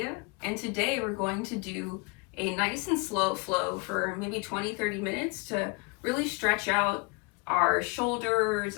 and today we're going to do a nice and slow flow for maybe 20-30 minutes to really stretch out our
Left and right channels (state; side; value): quieter; right; 30.1 dB